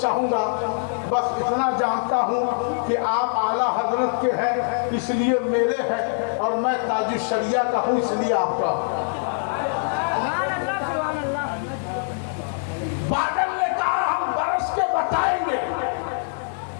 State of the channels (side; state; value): right; silent; digital silence